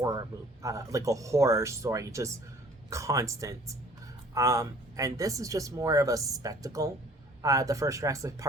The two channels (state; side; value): normal; both; correlation 0.54